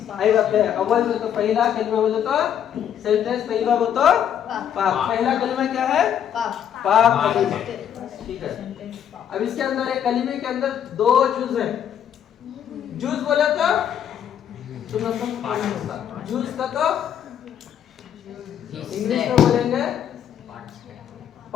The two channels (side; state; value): right; quieter; 9.4 dB